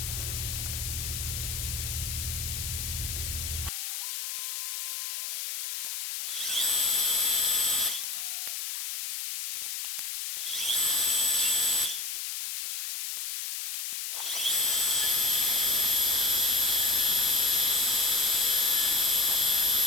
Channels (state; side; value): noise; left; hiss, 4 dB below the sound